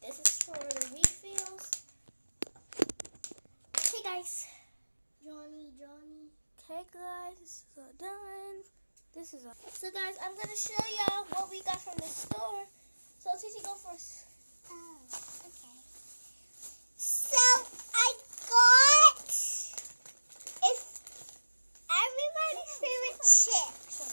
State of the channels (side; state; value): both; inverted; correlation -1.00